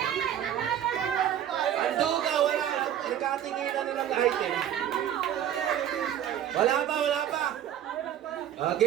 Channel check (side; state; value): left; quieter; 10.4 dB